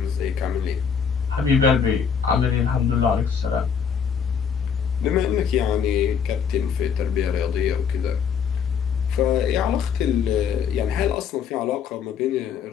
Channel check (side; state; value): right; quieter; 7.0 dB